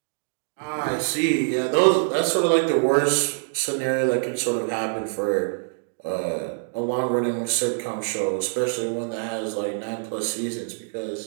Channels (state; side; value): silent; left; digital silence